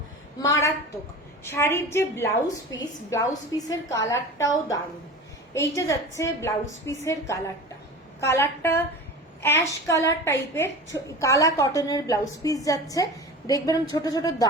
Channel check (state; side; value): normal; both; correlation 0.34